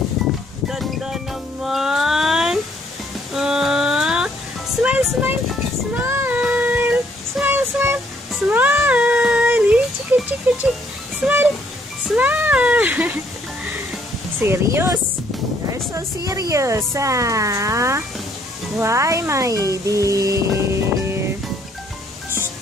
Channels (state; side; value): normal; both; correlation 0.67